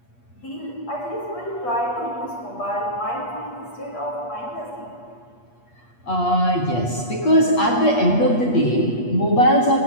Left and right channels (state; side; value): late; right; 8.4 ms